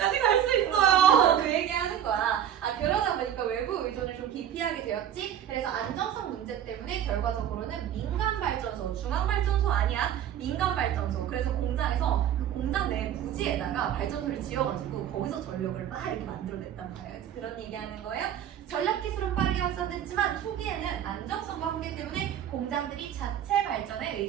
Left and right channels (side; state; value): left; quieter; 10.1 dB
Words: 갈 수 있어요. 그 얘기 하는 거야. 그러다 보니까 외부 의존을 좀 기피하게 되었지. 그래서 안정성 문제 때문에 결과적으로는 민간 발전소, 중앙 발전소 아니야. 민간 발전소. 그래서 공장에서 그 공장 내 부지에다가 발전소를 지어가지고 거기서 전력을 막 이렇게 만들어냈단 말이야. 그런 얘기하는 거예요. 전력 기술은 빠르게 확산됐지만 초기에는 안정성과 한계 때문에 공장들이 자체 발전에